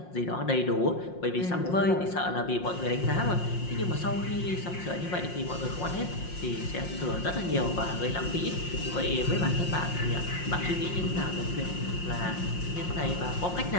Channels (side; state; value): right; late; 5.6 ms